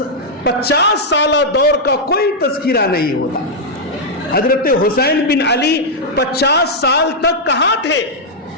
50 سالہ دور کا کوئی تذکرہ نہیں ہوتا۔ حضرت حسین بن علی 50 سال تک کہاں تھے؟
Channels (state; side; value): normal; both; correlation -0.04